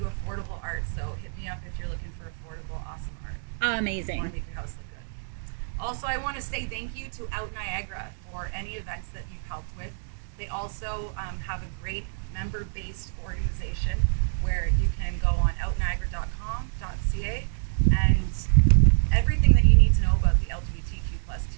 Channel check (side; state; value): left; silent; digital silence